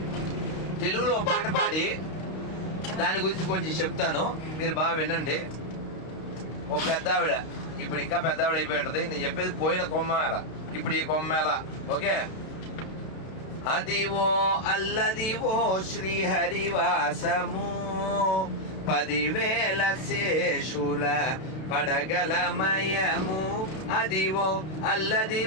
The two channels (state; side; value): late; right; 32 ms